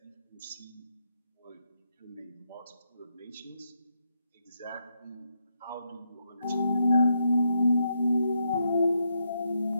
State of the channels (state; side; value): inverted; both; correlation -0.80